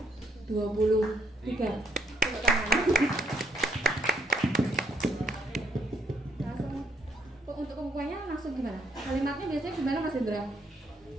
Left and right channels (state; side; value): normal; both; correlation 0.70